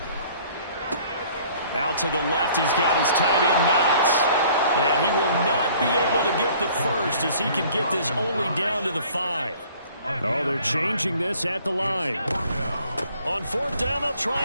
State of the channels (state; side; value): inverted; both; correlation -0.55